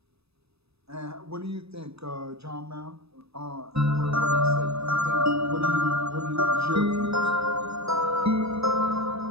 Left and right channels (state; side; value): late; left; 0.78 ms